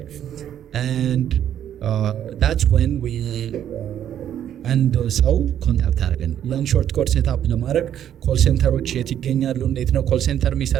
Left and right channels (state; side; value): quieter; left; 10.3 dB